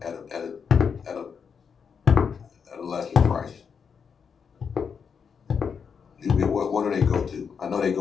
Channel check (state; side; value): quieter; right; 6.4 dB